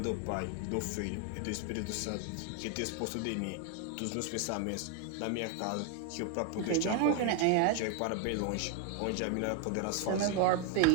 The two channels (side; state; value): both; different; correlation 0.01